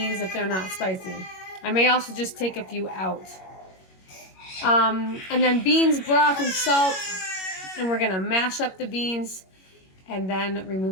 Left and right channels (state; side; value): late; right; 21 ms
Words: if they're not spicy. I may also just take a few out. And then beans, broth, and salt. And we're going to mash up the beans and then